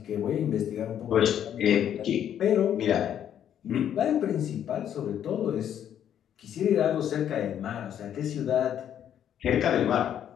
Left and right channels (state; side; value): quieter; right; 9.8 dB